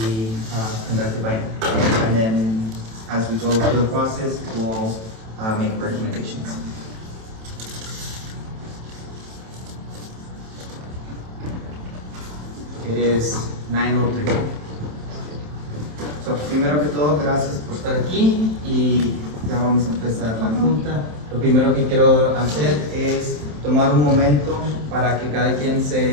conducted by him. And then as we go through the process, we'll make recommendations. It is 9:03. So, primero que todo, gracias por estar aquí y ya vamos a empezar la junta. Lo primero que quiero hacer es tomar un momento para que cada quien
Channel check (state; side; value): late; left; 27 ms